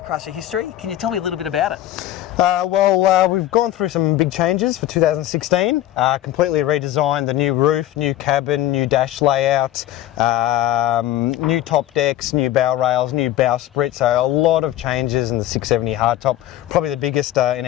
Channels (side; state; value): right; quieter; 13.6 dB